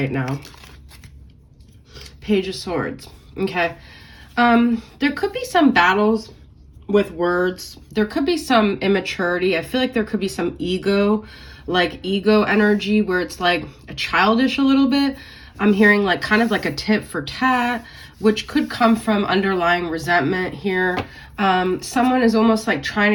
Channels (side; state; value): both; identical; correlation 1.00